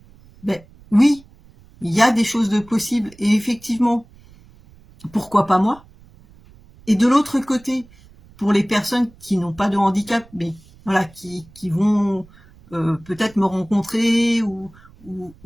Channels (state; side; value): noise; right; rumble, 26 dB below the sound